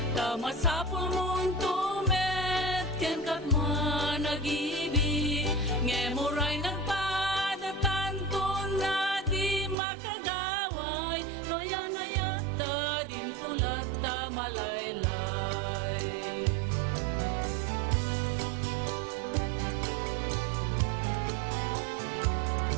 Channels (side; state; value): left; drops out; at 9.8 s